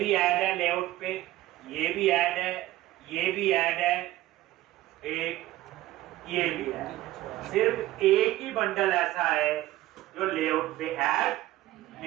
ऐड है लेआउट पे, ये भी ऐड है, ये भी ऐड है, एक ये भी है। सिर्फ एक ही बंडल ऐसा है जो लेआउट पे ऐड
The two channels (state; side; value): quieter; left; 16.0 dB